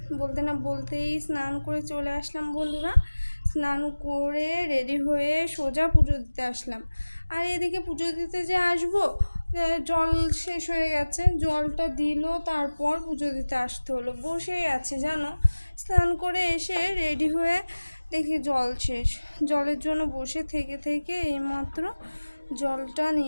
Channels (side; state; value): both; inverted; correlation -1.00